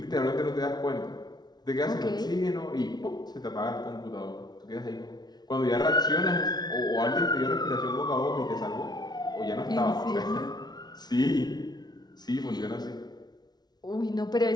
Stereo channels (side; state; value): right; late; 0.19 ms